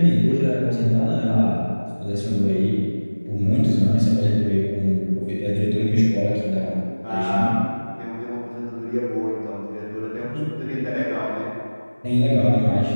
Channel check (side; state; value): both; inverted; correlation -1.00